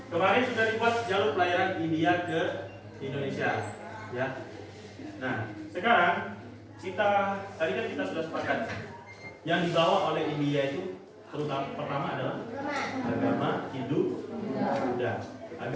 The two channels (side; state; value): both; identical; correlation 1.00